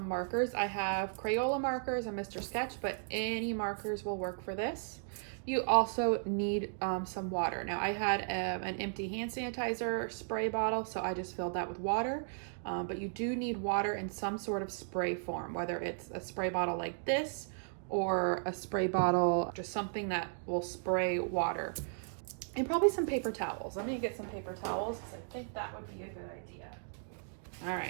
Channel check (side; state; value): left; silent; digital silence